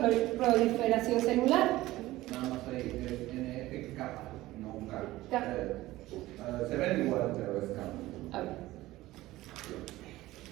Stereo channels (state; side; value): quieter; left; 17.2 dB